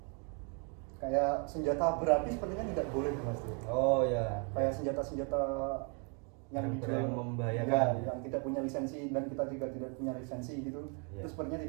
kayak senjata berapi sepertinya tidak boleh, Mas Dery. Oh ya. Kayak senjata yang Barang-barang dijual, membahayakan ya, yang tidak punya lisensi dan kita juga tidak punya lisensi gitu, Ya. itu sepertinya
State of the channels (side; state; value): left; quieter; 34.7 dB